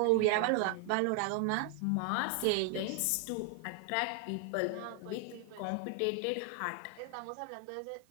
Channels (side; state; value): both; different; correlation 0.00